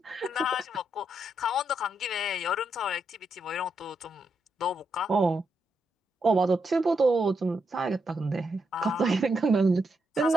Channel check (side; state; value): both; normal; correlation 0.81